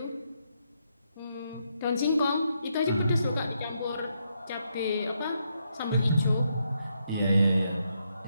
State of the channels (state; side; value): inverted; both; correlation -0.79